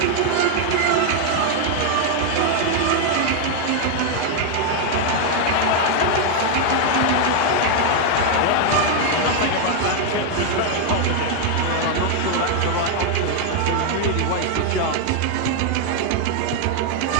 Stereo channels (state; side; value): different; both; correlation 0.00